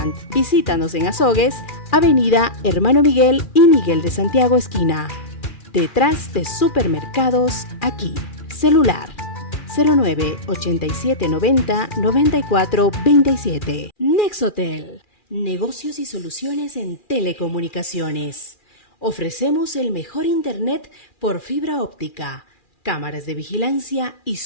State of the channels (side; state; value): right; late; 2.4 ms